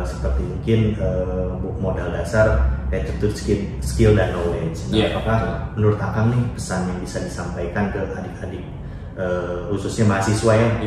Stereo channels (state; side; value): identical; both; correlation 1.00